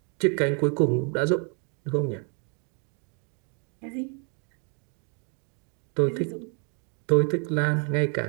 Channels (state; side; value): quieter; left; 38.4 dB